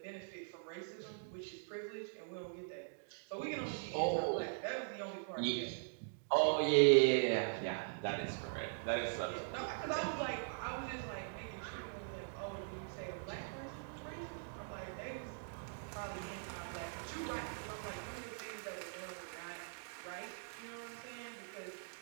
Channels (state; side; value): silent; left; digital silence